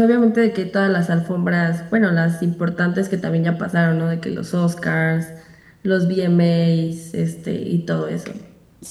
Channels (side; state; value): both; identical; correlation 1.00